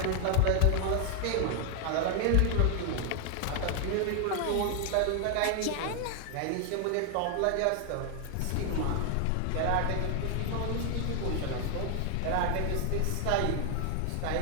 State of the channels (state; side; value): different; both; correlation 0.00